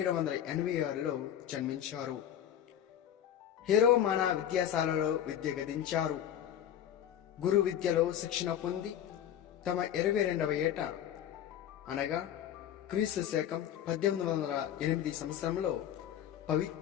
జన్మించారు. హెరోమానా విద్యాశాలలో విద్య గదించారు. గురు విద్యలో శిక్షణ పొంది తమ 22వ ఏట అనగా క్రీస్తు శకం 1808 సంవత్సరంలో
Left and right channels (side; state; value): right; quieter; 10.3 dB